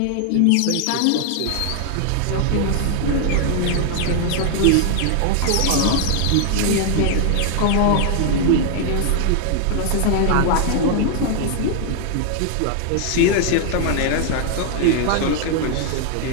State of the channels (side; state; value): both; different; correlation 0.00